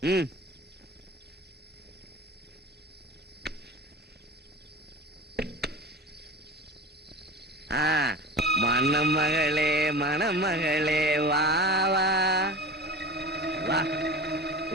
ம், மணமகளே மணமகளே வா வா வா,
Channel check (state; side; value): normal; both; correlation 0.34